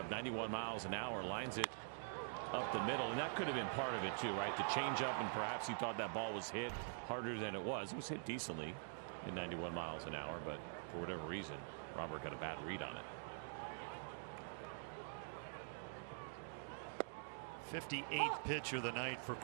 91 miles an hour, lines it up the middle, and that could have been part of it too, right? The changeup, and perhaps he thought that ball was hit harder than it was. It was hit decently at 91 miles an hour, but for whatever reason, Robert got a bad read on it. 58th pitch of the night for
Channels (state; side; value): silent; left; digital silence